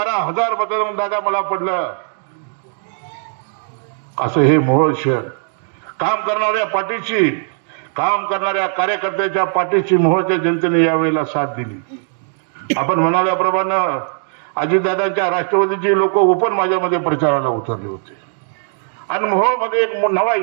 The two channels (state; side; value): silent; left; 61 dB below the other